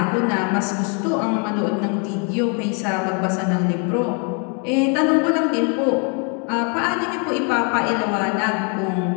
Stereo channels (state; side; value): quieter; right; 37.9 dB